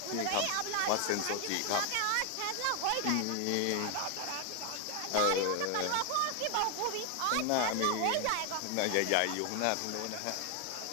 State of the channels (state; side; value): different; both; correlation 0.01